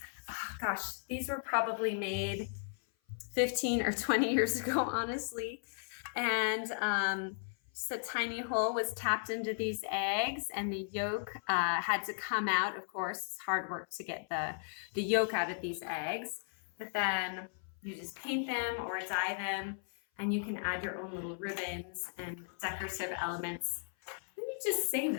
Oh, gosh, these were probably made 15 or 20 years ago, honestly. And just a tiny hole was tapped into these eggs and the yolk had to come out. Of course, it's hard work to get the yolk out of these eggs. But then you just paint them or dye them and you can add your own little ribbons and decorative elements. Then you just save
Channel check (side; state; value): right; silent; 54 dB below the other